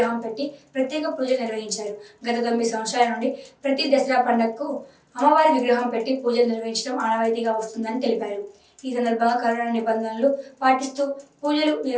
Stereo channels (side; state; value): both; identical; correlation 1.00